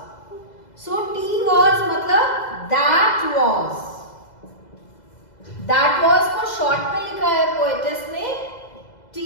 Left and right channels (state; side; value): late; right; 2.0 ms